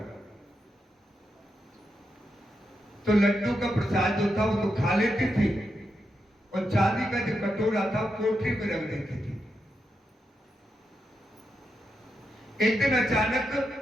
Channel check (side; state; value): both; normal; correlation 0.85